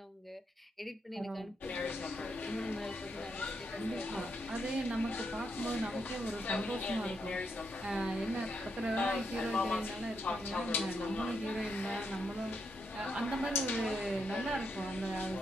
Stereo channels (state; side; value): normal; both; correlation 0.80